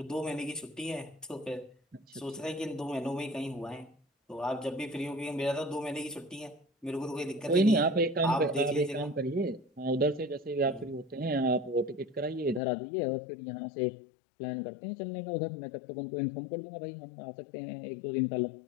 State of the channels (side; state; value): right; drops out; at 12.6 s